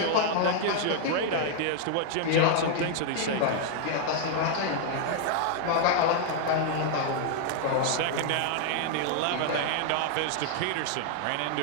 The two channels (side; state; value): both; different; correlation 0.00